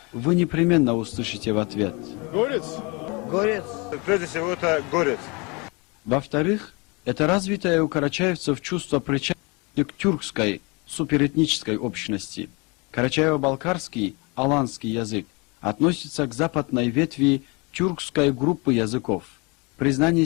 вы непременно услышите в ответ: горец. Горец. Прежде всего, это горец. Во-вторых, это развитое у карачаевцев чувство причастности к тюркской суперэтнической общности. Карачаево-балкарский, аланский язык относится к западной ветви тюркской группы языков. Признание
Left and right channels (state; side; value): quieter; right; 28.8 dB